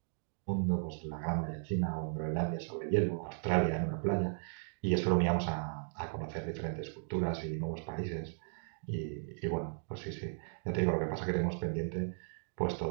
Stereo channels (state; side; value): silent; left; digital silence